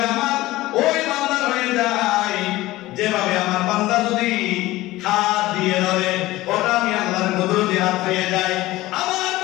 আমার ওই বান্দা হয়ে যাই যেভাবে আমার বান্দা যদি হাত দিয়ে ধরে ওটা আমি আল্লাহর কুদরতি হাত হয়ে যাই। আমার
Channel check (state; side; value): quieter; right; 17.8 dB